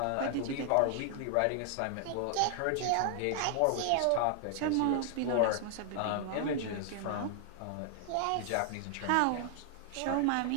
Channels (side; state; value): both; different; correlation 0.00